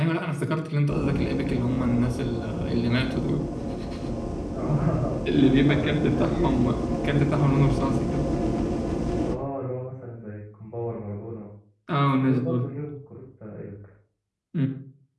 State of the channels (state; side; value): identical; both; correlation 1.00